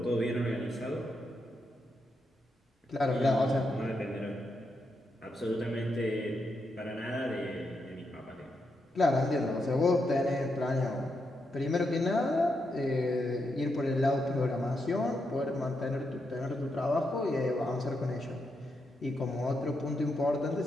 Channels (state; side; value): normal; both; correlation 0.83